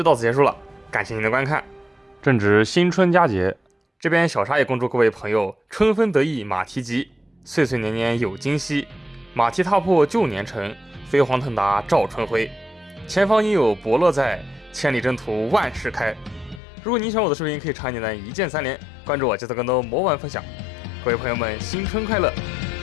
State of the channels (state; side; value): drops out; right; at 16.6 s